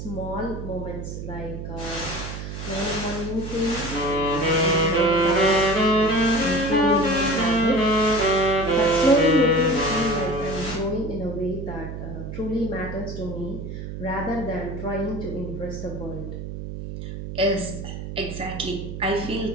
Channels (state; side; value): noise; right; hum, 8 dB below the sound